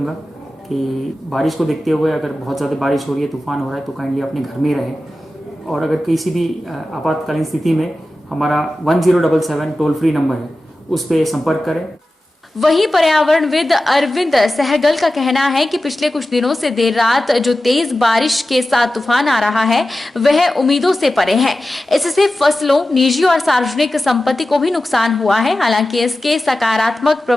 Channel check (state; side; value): normal; both; correlation 0.94